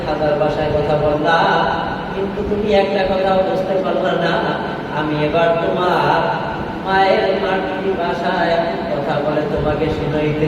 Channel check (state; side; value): identical; both; correlation 1.00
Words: ভাষায় কথা বললাম, কিন্তু তুমি একটা কথাও বুঝতে পারলা না। আমি এবার তোমার মায়ের মাতৃ ভাষায় কথা বলে তোমাকে